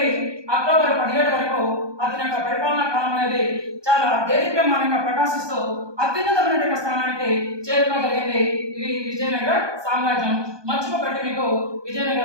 అక్టోబర్ 17 వరకు అతని యొక్క పరిపాలనా కాలం అనేది చాలా దేదీప్యమానంగా ప్రకాశిస్తూ అత్యున్నతమైన స్థానానికి చేరుకోగలిగింది ఇది విజయనగర సామ్రాజ్యం. మర్చిపోబెట్టి మీకు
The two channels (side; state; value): left; late; 1.2 ms